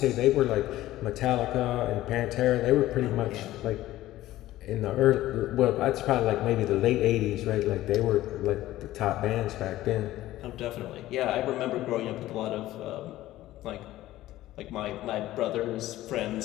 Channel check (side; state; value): right; quieter; 15.4 dB